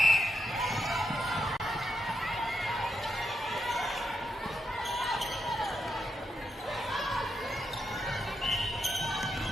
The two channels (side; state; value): both; normal; correlation 0.83